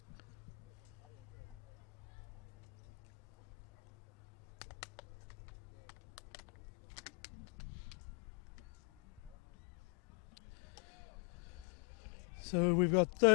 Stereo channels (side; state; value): right; quieter; 31.7 dB